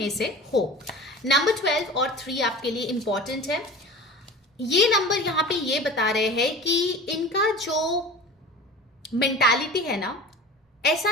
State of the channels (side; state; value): both; normal; correlation 0.37